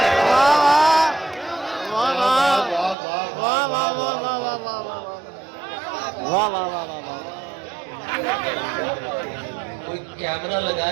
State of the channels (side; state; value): left; drops out; at 3.0 s